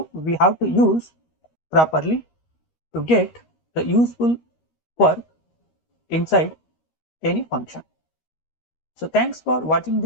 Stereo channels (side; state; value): right; late; 13 ms